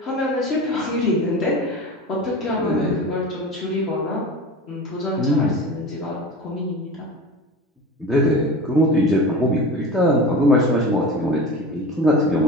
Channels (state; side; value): normal; both; correlation 0.32